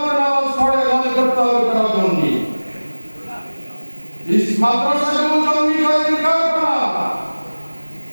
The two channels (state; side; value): inverted; both; correlation -1.00